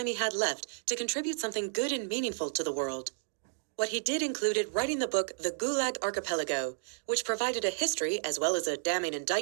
he had left to contribute something good and meaningful to the world. What he did included writing the book The Gulag Archipelago, which provided a history, as well as a damning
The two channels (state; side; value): silent; left; digital silence